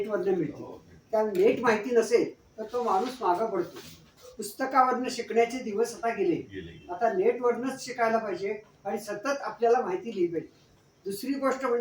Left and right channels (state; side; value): identical; both; correlation 1.00